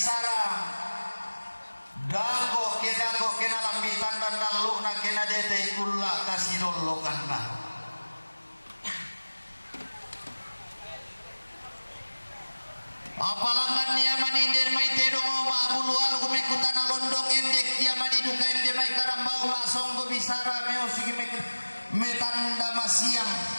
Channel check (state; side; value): inverted; both; correlation -1.00